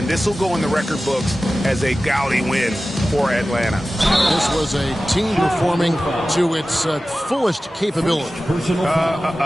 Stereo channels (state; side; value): normal; both; correlation 0.95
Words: this will go in the record books as a gaudy win for Atlanta. This was a team performing to its fullest capability.